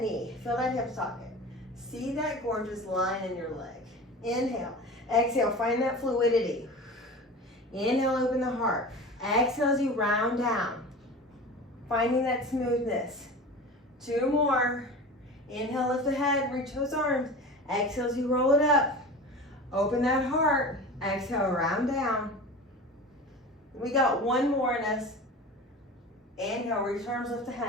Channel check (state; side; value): normal; both; correlation 0.34